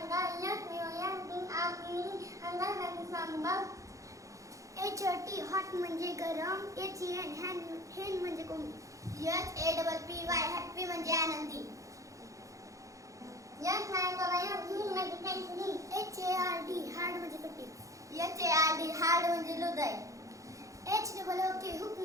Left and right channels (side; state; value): left; late; 0.16 ms